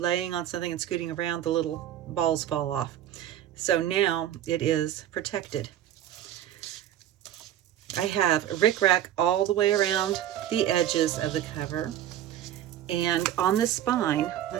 on something and scooting around. The little balls fall off. So now it is protected. I have rickrack all the way around the edges of the cover, and on the spine,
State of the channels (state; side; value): quieter; left; 11.6 dB